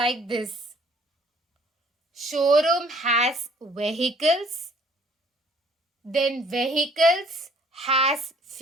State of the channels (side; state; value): both; normal; correlation 0.58